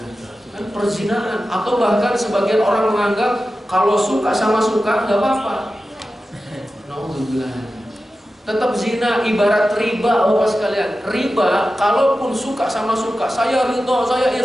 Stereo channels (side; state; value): both; normal; correlation 0.93